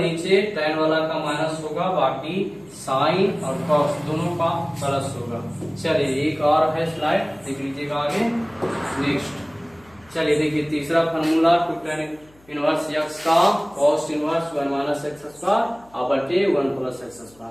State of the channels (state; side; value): noise; left; hum, 29 dB below the sound